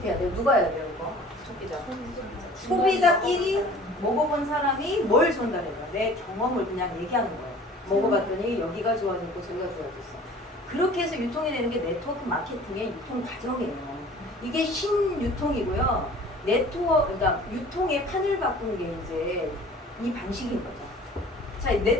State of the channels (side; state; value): both; normal; correlation 0.47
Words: 해야 돼요? 누가 해야 돼요? 이거? 소비자. 소비자끼리 먹어본 사람이 뭘 전달해요? 내 경험을 그냥 얘기하는 거예요. 먹어봤더니 여기가 좋아졌고 저기가 좋아졌어. 그렇게 해서 유통이 되는 게 네트워크 마케팅의 유통 과정이에요. 이게 신유통이고요. 그러니까 유통의 판을 바꾼 게 이제 이 방식인 거죠. 자,